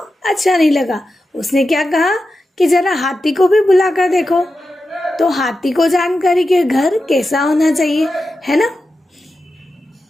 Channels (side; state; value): both; normal; correlation 0.91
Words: नहीं लगा। उसने क्या कहा कि जरा हाथी को भी बुला कर देखो। तो हाथी को जानकारी कि घर कैसा होना चाहिए, है ना,